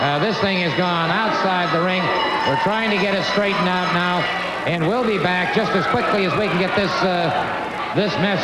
This thing has gone outside the ring. We're trying to get it straightened out now, and we'll be back just as quickly as we can get this mess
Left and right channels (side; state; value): both; identical; correlation 1.00